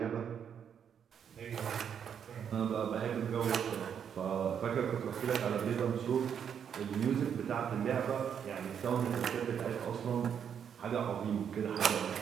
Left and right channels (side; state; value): left; quieter; 8.0 dB